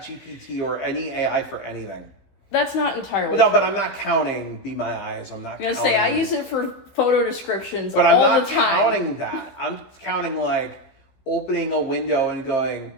or any AI for anything. That's not entirely true. But I'm not counting Be My Eyes. I'm not. I'm gonna say I use it for photo descriptions but all I'm the time. Counting that. I'm counting like opening a window and going,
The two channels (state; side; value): late; right; 15 ms